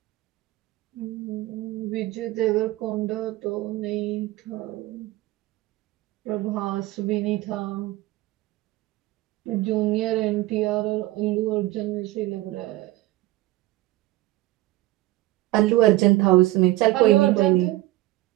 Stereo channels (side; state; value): left; quieter; 17.7 dB